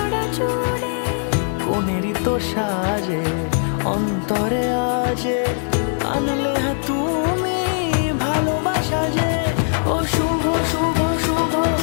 জুড়ে। কোনেরই তো সাজে অন্তরে আজে আনলে হ্যাঁ তুমি ভালোবাসা যে। ও শুভ শুভ শুভ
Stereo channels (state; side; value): silent; right; digital silence